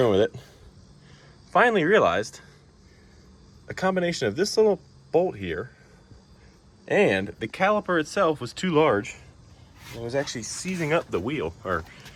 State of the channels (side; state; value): both; identical; correlation 1.00